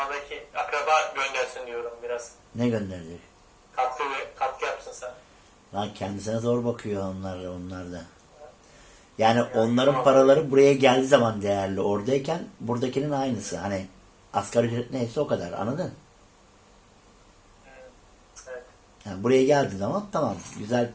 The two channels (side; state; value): both; identical; correlation 1.00